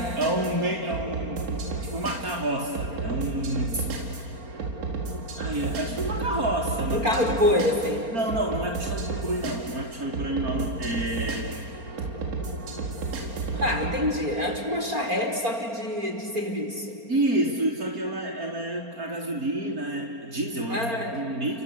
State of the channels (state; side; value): late; left; 4.3 ms